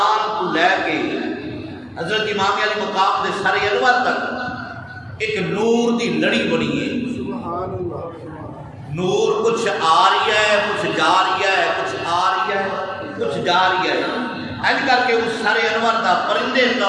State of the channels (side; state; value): both; identical; correlation 1.00